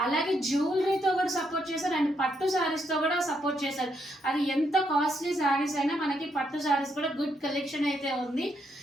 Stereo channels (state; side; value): normal; both; correlation 0.77